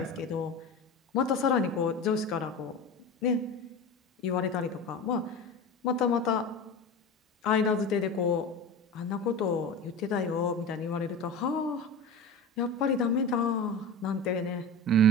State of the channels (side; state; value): both; normal; correlation 0.30